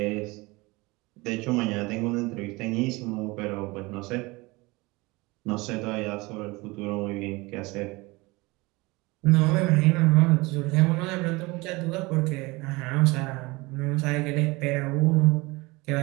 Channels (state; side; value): quieter; left; 23.4 dB